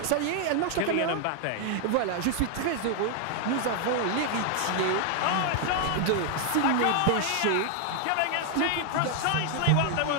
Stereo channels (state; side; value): different; both; correlation 0.00